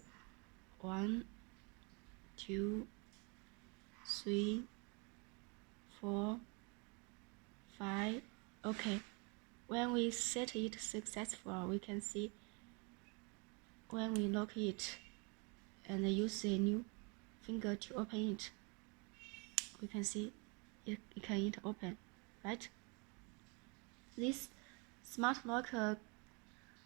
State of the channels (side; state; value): left; quieter; 32.4 dB